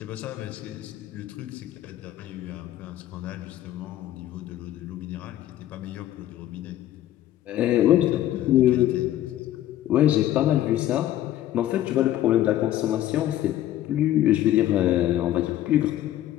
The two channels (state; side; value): quieter; right; 13.2 dB